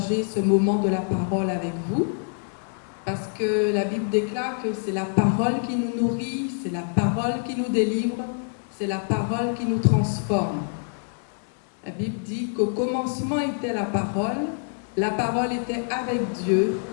ce moment de la parole avec vous, parce que la Bible déclare que c'est la parole qui nous nourrit, c'est la parole qui nous délivre, c'est la parole qui nous transforme. La Bible dit qu'au commencement était la parole était avec Dieu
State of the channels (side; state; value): right; silent; 61 dB below the other